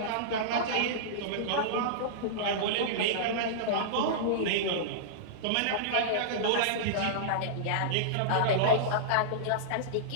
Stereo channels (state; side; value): different; both; correlation -0.02